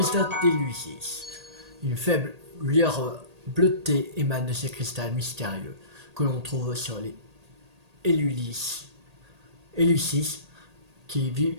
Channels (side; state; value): left; late; 1.8 ms